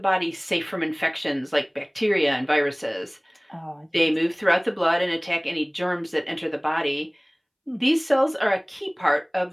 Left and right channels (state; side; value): identical; both; correlation 1.00